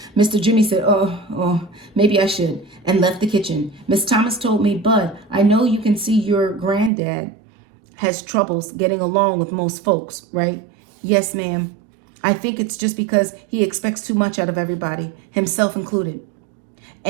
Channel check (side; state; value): left; drops out; at 6.9 s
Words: Mr. Jimmy said, oh, maybe I should, and left the kitchen. Miss Thomas told me, Bud, I know you can see your granddad has troubles getting along with most folks, right? Yes, ma'am. I think it's just because he expects too much out of everybody, himself included.